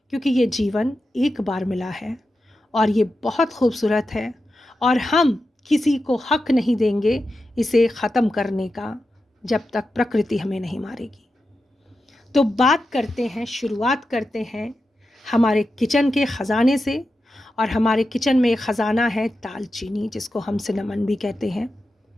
क्योंकि ये जीवन एक बार मिला है और ये बहुत खूबसूरत है, और हम किसी को हक नहीं देंगे इसे ख़त्म करने का जब तक प्रकृति हमें नहीं मारेगी। तो बात करते हैं, शुरुआत करते हैं हमारे किचन के ख़जाने से, और हमारे किचन में एक ख़जाना है दालचीनी, जिसको हम सिनेमन भी कहते हैं।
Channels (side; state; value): both; normal; correlation 0.90